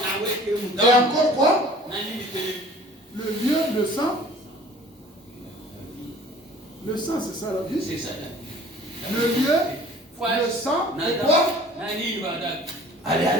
et encore quoi? Le lieu, le sang. Le sang, c'est ça la vie. C'est ça. Le lieu, le sang et quoi?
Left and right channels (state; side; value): normal; both; correlation 0.49